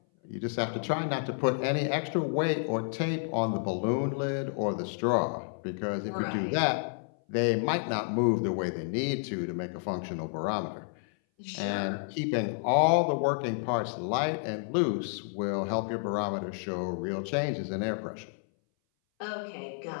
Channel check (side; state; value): right; silent; 58 dB below the other